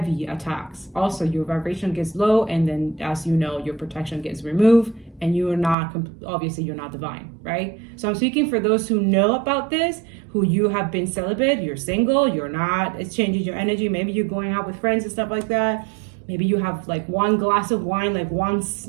attacks. Also, your vibration gets low, and then as you know, your protection gets removed, and you're not, obviously you're not divine, right? So I'm speaking for those who know about this, who you have been celibate, you're single, you're not, it's changing your energy. Maybe you're going out with friends and stuff like that. Maybe you have like one glass of wine, like once,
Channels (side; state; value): left; drops out; at 5.8 s